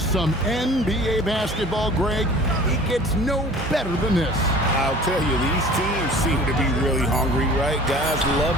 some NBA basketball, Greg. It gets no better than this. I'll tell you, these teams seem to be really hungry, right? Guys love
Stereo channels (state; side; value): normal; both; correlation 0.45